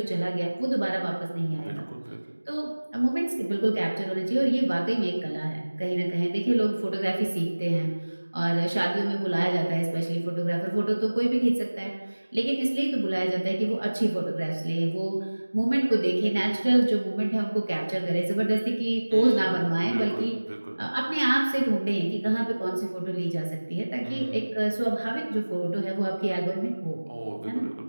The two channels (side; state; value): both; inverted; correlation -1.00